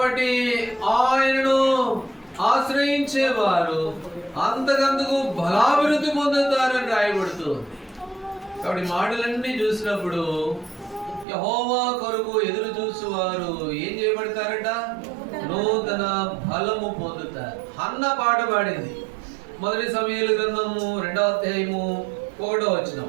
ఆయనను ఆశ్రయించేవారు అంతకంతకు బలాభివృద్ధి పొందుతారని రాయబడుతుంది. కాబట్టి మాటలన్నీ చూసినప్పుడు యెహోవా కొరకు ఎదురు చూసేవారు ఏం చేయబడతారట? నూతన బలము పొందుతారు. హన్న పాట పాడింది. మొదటి సమూయేలు గ్రంథము 2వ అధ్యాయము 1వ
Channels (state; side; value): drops out; left; at 11.2 s